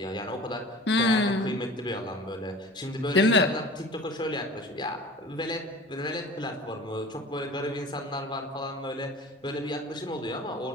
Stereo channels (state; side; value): normal; both; correlation 0.40